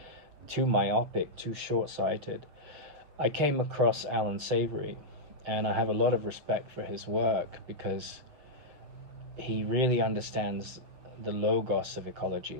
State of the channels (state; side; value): late; left; 7.3 ms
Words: too myopic, too short-sighted. I came across Allan Savory, and I have a lot of respect for his work because he really understands the logos of ecology.